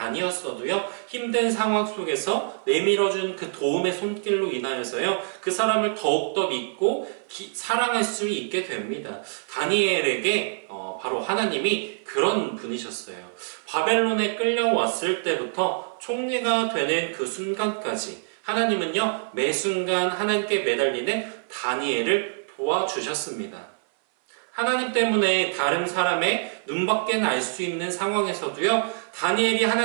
힘든 상황 속에서 내밀어준 그 도움의 손길로 인하여서요, 그 사람을 더욱더 믿고 사랑할 수 있게 됩니다. 다니엘에게 바로 하나님이 그런 분이셨어요. 바벨론에 끌려왔을 때부터 총리가 되는 그 순간까지 하나님은요, 매 순간 하나님께 매달리는 다니엘을 도와주셨습니다. 하나님 때문에 다른 사람의 눈밖에는 알 수 있는 상황에서도요, 다니엘이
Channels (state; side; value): silent; left; 57 dB below the other